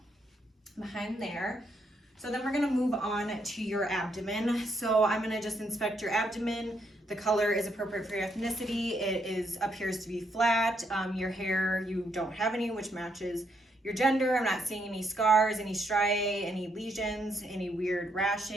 behind there. So then we're gonna move on to your abdomen. So I'm gonna just inspect your abdomen. The color is appropriate for your ethnicity. It appears to be flat. Your hair, you don't have any, which matches your gender. I'm not seeing any scars, any striae, any lesions, any weird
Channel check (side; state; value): both; normal; correlation 0.76